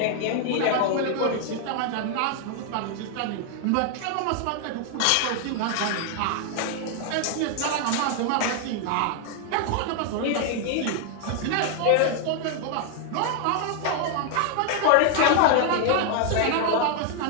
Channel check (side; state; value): both; different; correlation 0.00